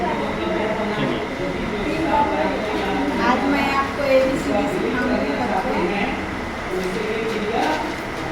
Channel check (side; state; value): both; identical; correlation 1.00